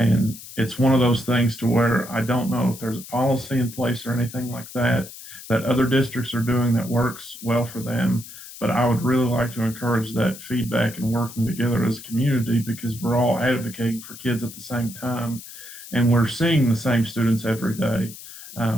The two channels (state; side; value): noise; left; hiss, 15 dB below the sound